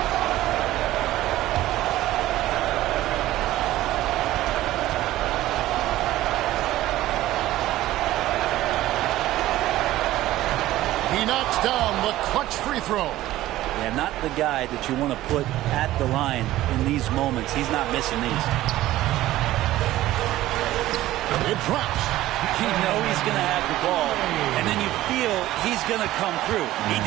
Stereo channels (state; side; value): quieter; left; 15.3 dB